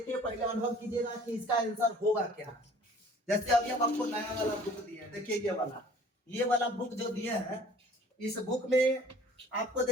पहले अनुभव कीजिएगा कि इसका आंसर होगा क्या। जैसे अभी हम आपको नया वाला बुक दिए, देखिए ये वाला बुक जो दिए हैं, इस बुक में आपको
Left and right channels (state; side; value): normal; both; correlation 0.51